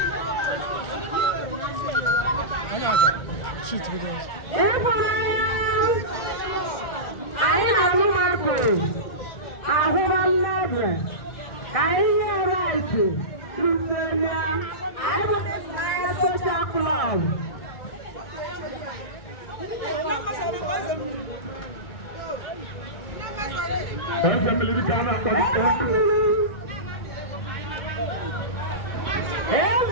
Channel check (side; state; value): right; late; 1.6 ms